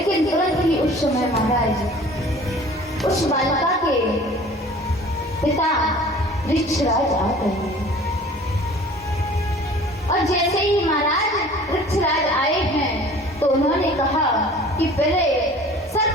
तुरंत ही उस समय महाराज उस बालिका के पिता वृक्षराज आ गए और जैसे ही महाराज वृक्षराज आए हैं तो उन्होंने कहा कि पहले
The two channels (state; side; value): normal; both; correlation 0.47